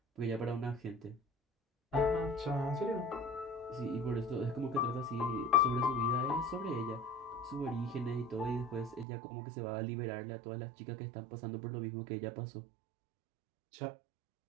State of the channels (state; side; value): drops out; left; at 9.1 s